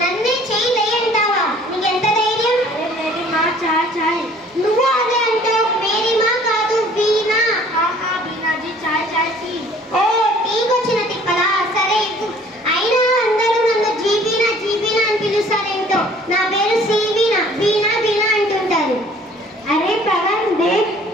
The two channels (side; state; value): both; normal; correlation 0.54